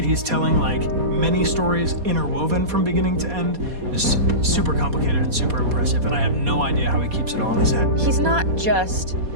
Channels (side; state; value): left; late; 4.2 ms